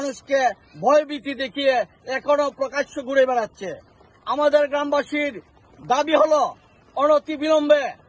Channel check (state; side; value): identical; both; correlation 1.00